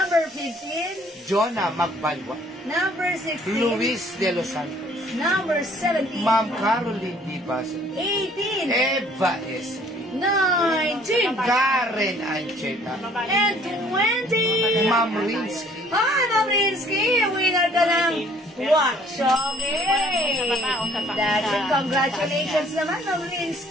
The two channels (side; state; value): both; normal; correlation 0.58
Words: 15. Jonah Magbalwa. Number 16. Luis de los Santos. Number 17. Ma'am Caroline Di Basa. 18. Eva S. 19. Karen Ancheta. And 20. Ma'am Rinsky. Hi, Ma'am Rinsky! Winner ka ng watch. Okay. That's it. Congratulations naman, Ma'am